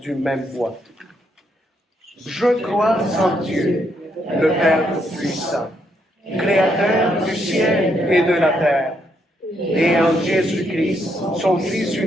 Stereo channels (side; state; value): both; normal; correlation 0.75